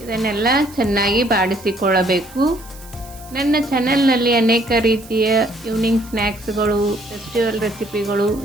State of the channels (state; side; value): noise; right; hiss, 20 dB below the sound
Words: ಇದನ್ನೆಲ್ಲ ಚೆನ್ನಾಗಿ ಬಾಡಿಸಿಕೊಳ್ಳಬೇಕು. ನನ್ನ ಚಾನೆಲ್ನಲ್ಲಿ ಅನೇಕ ರೀತಿಯ ಈವ್ನಿಂಗ್ ಸ್ನ್ಯಾಕ್ಸ್ಗಳು, ಫೆಸ್ಟಿವಲ್ ರೆಸಿಪಿಗಳು